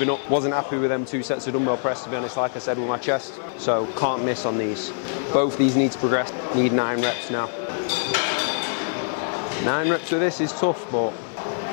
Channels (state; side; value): silent; right; digital silence